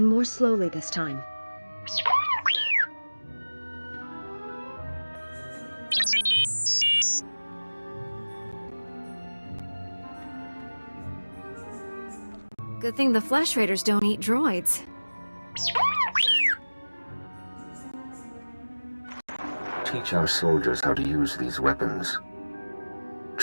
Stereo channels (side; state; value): both; inverted; correlation -1.00